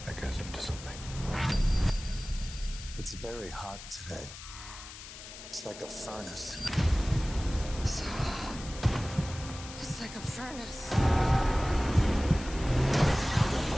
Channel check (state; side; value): noise; left; hiss, 14 dB below the sound